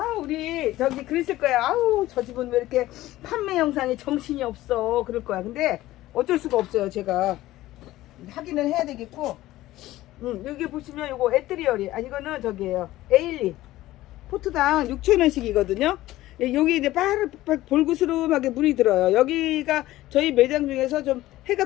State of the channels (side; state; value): right; quieter; 16.1 dB